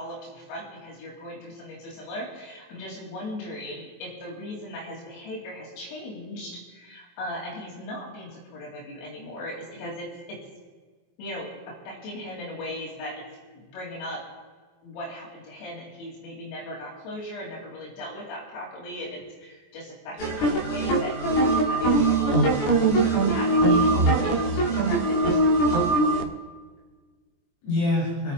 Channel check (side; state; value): right; late; 23 ms